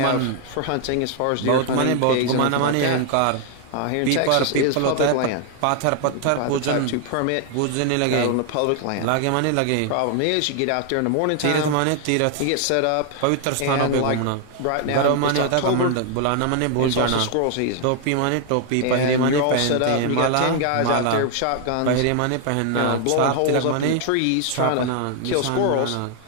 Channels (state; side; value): different; both; correlation 0.00